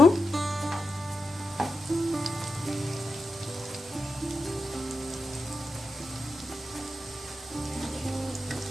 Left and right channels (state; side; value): normal; both; correlation 0.89